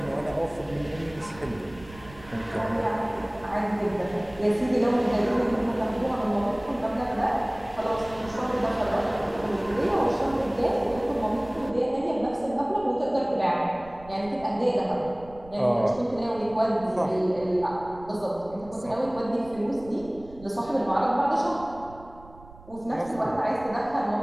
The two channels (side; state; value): right; noise; rumble, 20 dB below the sound